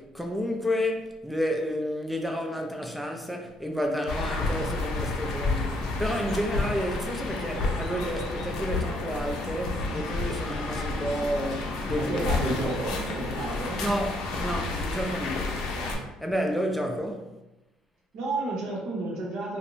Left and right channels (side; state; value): both; normal; correlation 0.72